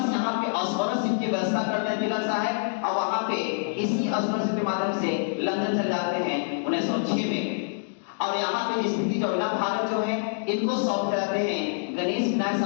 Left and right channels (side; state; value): right; silent; digital silence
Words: यहाँ पे स्कॉलरशिप की व्यवस्था करते हैं तिलक साहब, और वहां पे इसी स्कॉलरशिप के माध्यम से लंदन चले जाते हैं 1906 में। और यहाँ पे स्थिति जो है ना, भारत जो है इनको सौंप जाते हैं, गणेश विनायक